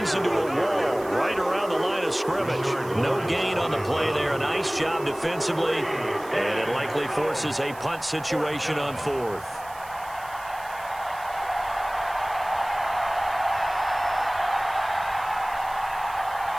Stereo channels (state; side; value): noise; right; hiss, 20 dB below the sound